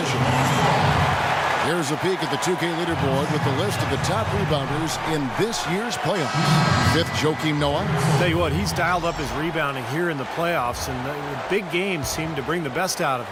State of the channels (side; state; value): both; identical; correlation 1.00